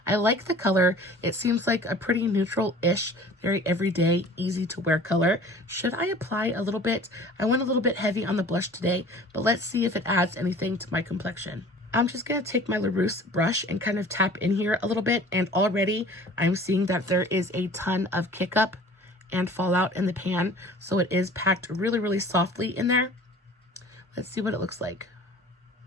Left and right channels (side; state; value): both; normal; correlation 0.46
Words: I like the color. It seems like a pretty neutral-ish, very everyday, easy to wear color. Should I apply a little bit? I went a little bit heavy on the blush today, but let's see if it adds anything to my complexion. I'm just going to take my LaRousse brush and kind of tap in here a little bit, and already I'm seeing that there is a ton of kick up and fallout in the pan, so it is packed really softly in there. Let's see what it looks like.